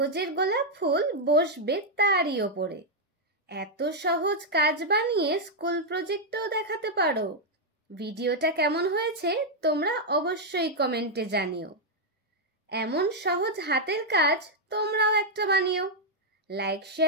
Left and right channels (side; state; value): both; normal; correlation -0.02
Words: গোলাপ ফুল বসবে তারই ওপরে। এত সহজ কাজ বানিয়ে স্কুল প্রজেক্টেও দেখাতে পারো। ভিডিওটা কেমন হয়েছে তোমরা অবশ্যই কমেন্টে জানিও। এমন সহজ হাতের কাজ তোমরাও একটা বানিও। লাইক